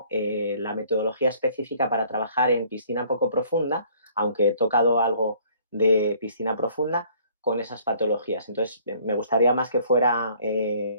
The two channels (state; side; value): inverted; both; correlation -0.58